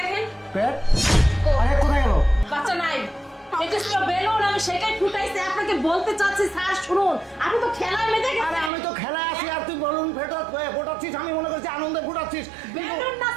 পেট আরে কোথায় গেল বাচ্চা নাই এটা ছিল বেলুন আমি সেটাই ফুটাইছি আপনাকে বলতে চাচ্ছি স্যার শুনুন আমি তো খেলায় মেতে গেছি আরে আমি তো খেলা আছি আর তুই বলুন ফোটাচ্ছিস আমি মনে করছি আনন্দে ফোটাচ্ছিস বেলুন না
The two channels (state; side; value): drops out; left; at 8.7 s